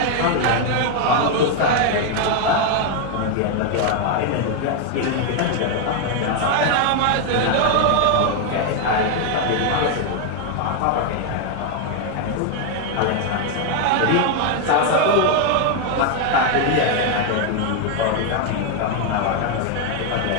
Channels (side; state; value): both; different; correlation 0.01